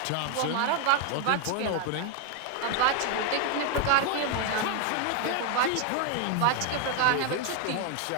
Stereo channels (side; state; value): both; different; correlation 0.01